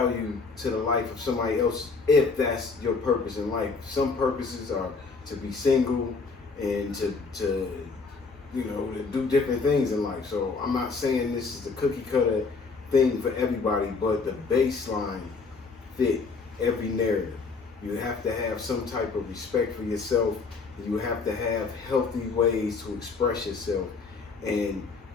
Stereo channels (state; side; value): quieter; right; 4.5 dB